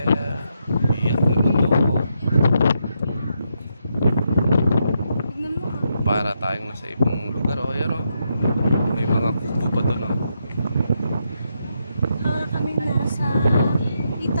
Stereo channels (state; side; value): inverted; both; correlation -0.81